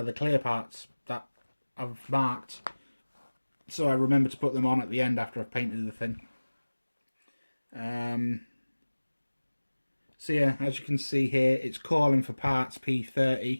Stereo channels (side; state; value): both; inverted; correlation -1.00